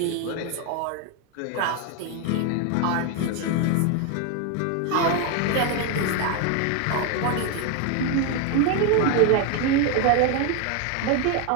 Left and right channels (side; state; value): both; different; correlation 0.01